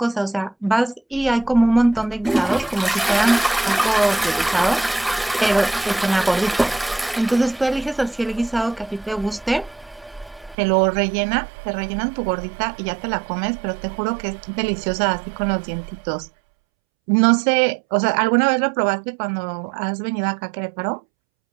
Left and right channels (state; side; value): drops out; left; at 10.6 s